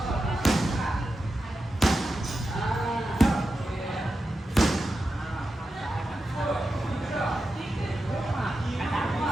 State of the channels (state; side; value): normal; both; correlation 0.90